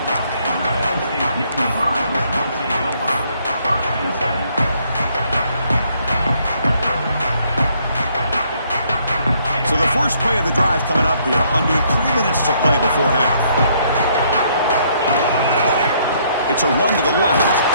So the first play of the drive coming up here. Under 3 minutes to play before half. It's a run to the left.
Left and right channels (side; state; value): both; inverted; correlation -0.68